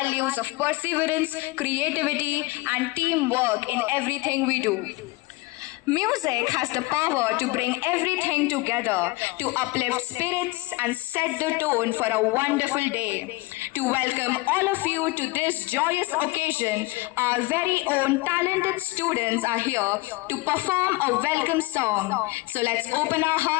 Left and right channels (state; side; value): quieter; right; 22.5 dB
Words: of perseverance, creativity, and teamwork in everything we do. Music has the power to bring everything together, to uplift spirits and set the tone for a wonderful day. To welcome all of you to this joyous occasion, our very own talented students are here to perform a welcome song. So let's open our